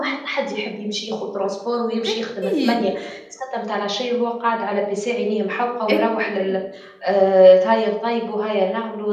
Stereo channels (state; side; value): identical; both; correlation 1.00